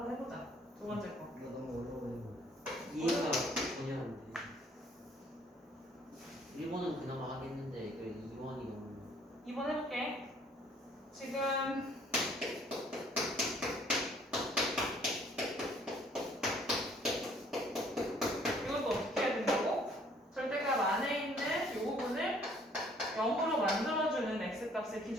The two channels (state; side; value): normal; both; correlation 0.60